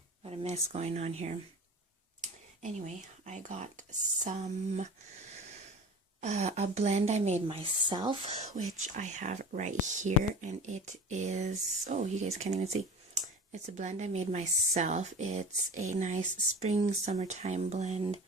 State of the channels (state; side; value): normal; both; correlation 0.37